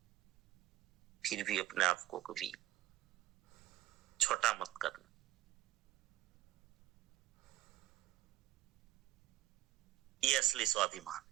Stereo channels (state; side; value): quieter; left; 16.0 dB